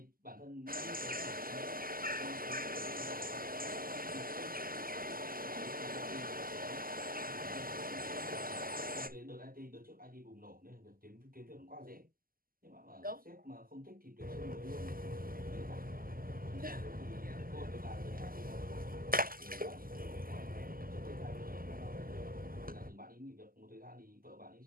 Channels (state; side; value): late; left; 0.42 ms